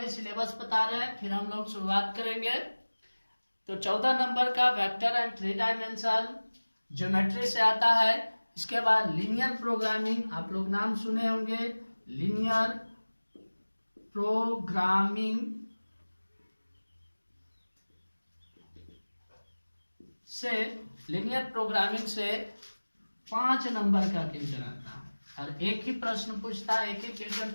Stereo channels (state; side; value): inverted; both; correlation -1.00